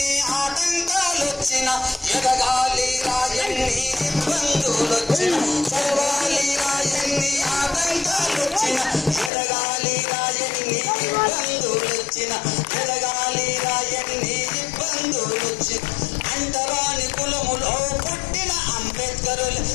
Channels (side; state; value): right; drops out; at 9.3 s